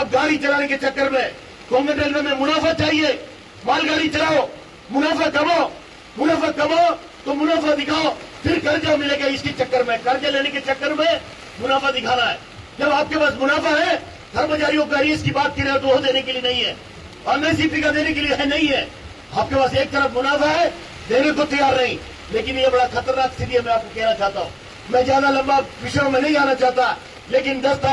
गाड़ी चलाने के चक्कर में, कोंकण रेलवे में मुनाफा चाहिए, मालगाड़ी चलाओ, मुनाफा कमाओ तो मुनाफा दिखाओ, फिर कर्जा मिलेगा। इसके चक्कर में, कर्जा लेने के चक्कर में मुनाफा दिखाना है। जब आपके पास मुनाफा है, कर्मचारियों का आईएएस की बात कर रहे हो तो वो देने के लिए नहीं है, एमएसपी का देने के लिए है, नहीं है। आपके पास एक तरफ मुनाफा है, देने को तैयार नहीं। लेकिन ये बड़ा खतरनाक स्थिति है। मैं आपको कहना चाहता हूँ, मैं ज्यादा लंबा विषयों में नहीं आना चाहता, लेकिन 10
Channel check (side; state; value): both; identical; correlation 1.00